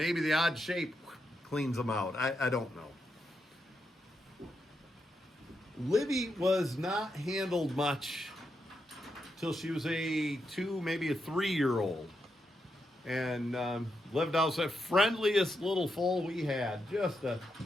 the odd shape cleans them out. I don't know. Libby was not handled much till she was a 2, maybe a 3-year-old, and lived out the friendliest little foal we had. Just a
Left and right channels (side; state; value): both; normal; correlation 0.83